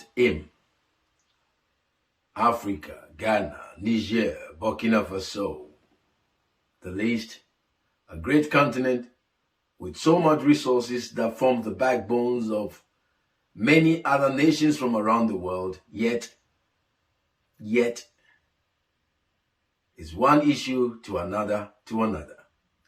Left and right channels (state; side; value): identical; both; correlation 1.00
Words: Im. Africa, Ghana, Niger, Burkina-Faso. The list, a great continent with so much resources that form the backbones of many other nations from around the world, yet is one issue to another.